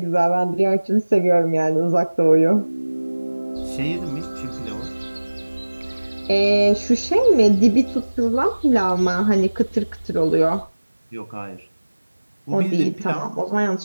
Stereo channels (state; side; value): inverted; both; correlation -1.00